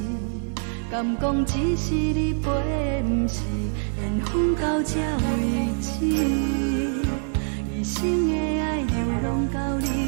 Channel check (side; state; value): left; silent; digital silence